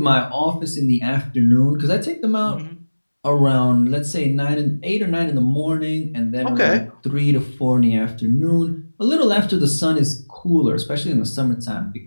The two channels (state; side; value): inverted; both; correlation -1.00